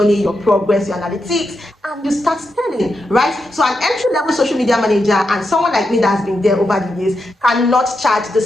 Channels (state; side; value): normal; both; correlation 0.86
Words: your progress, your analytics, and you start selling, right? So an entry-level social media manager and someone like me that has been there over the years cannot charge the